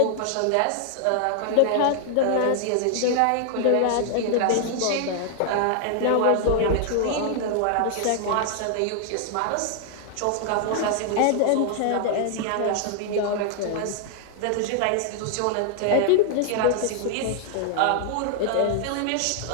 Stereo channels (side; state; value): both; different; correlation 0.00